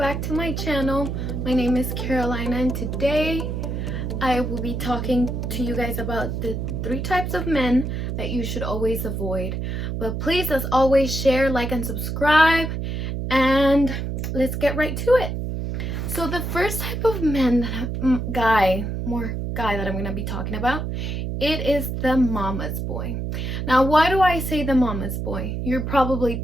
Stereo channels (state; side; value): noise; right; hum, 3 dB below the sound